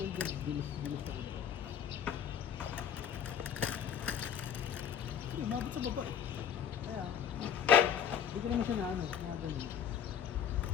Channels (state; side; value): quieter; right; 8.5 dB